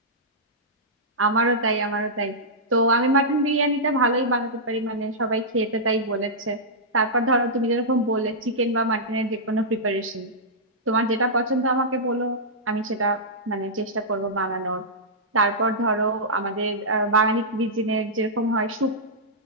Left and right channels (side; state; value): both; normal; correlation -0.12